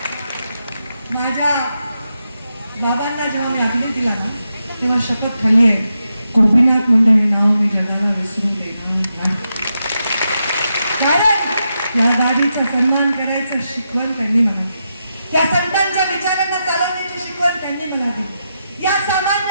माझ्या बाबांना जेव्हा मी अग्नी दिला ना, तेव्हा शपथ खाल्ली आहे, गोपीनाथ मुंडे हे नाव मी जगाला विसरून देणार नाही. कारण या गाडीचा सन्मान करायचं शिकवण त्यांनी मला, त्या संतांच्या विचारांना चालवण्याची शिकवण त्यांनी मला दिली. या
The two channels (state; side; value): inverted; both; correlation -0.85